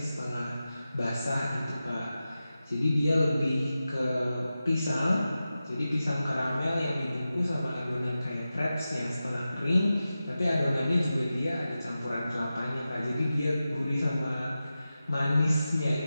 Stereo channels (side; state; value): both; inverted; correlation -0.93